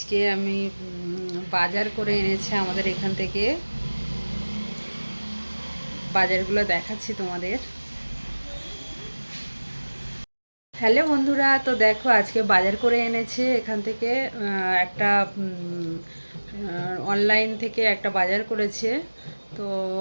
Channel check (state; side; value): inverted; both; correlation -1.00